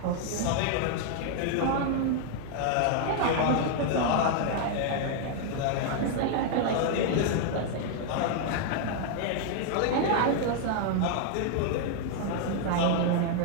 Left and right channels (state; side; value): different; both; correlation 0.00